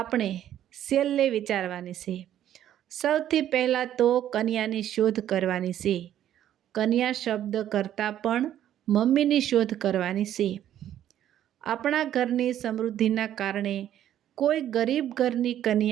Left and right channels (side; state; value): left; quieter; 11.3 dB